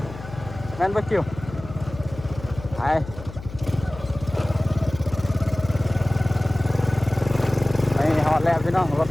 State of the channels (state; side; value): noise; left; hum, 14 dB below the sound